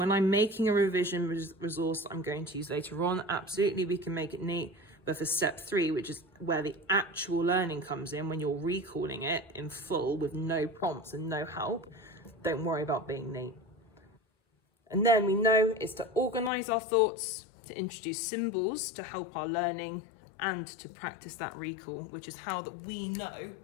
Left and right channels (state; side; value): drops out; right; at 16.5 s